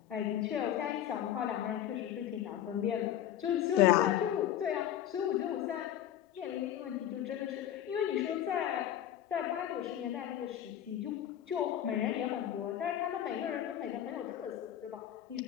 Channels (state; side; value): quieter; right; 11.2 dB